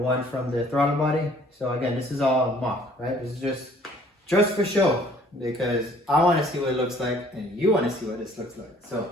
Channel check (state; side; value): normal; both; correlation 0.57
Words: from the throttle body. So again, this is all mock, right? This is just for show because I want to see what it looks like and you want to see what this looks like. So